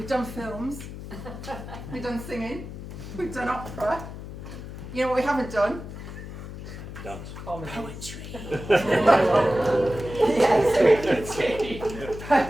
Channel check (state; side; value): noise; left; hum, 11 dB below the sound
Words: done films, we've done singing, we've done opera. You know what we haven't done? Dance. Poetry. Yes,